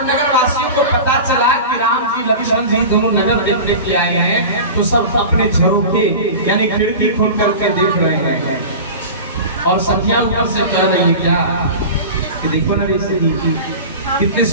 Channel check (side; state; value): both; inverted; correlation -0.32